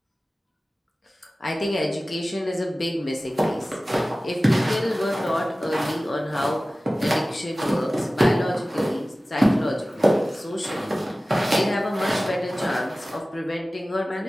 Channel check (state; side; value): normal; both; correlation 0.97